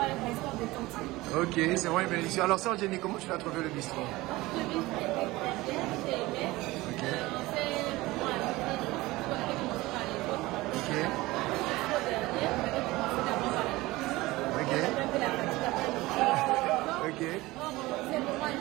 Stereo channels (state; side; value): quieter; left; 19.8 dB